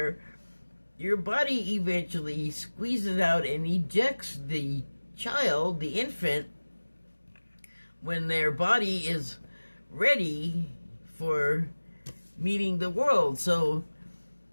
your body eventually squeezes out and ejects the child, the infant, when their body is ready for meeting the world. So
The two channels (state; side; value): inverted; both; correlation -1.00